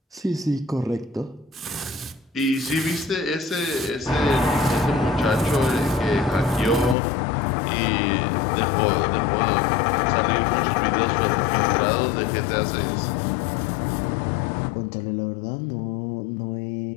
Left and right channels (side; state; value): right; drops out; at 7.0 s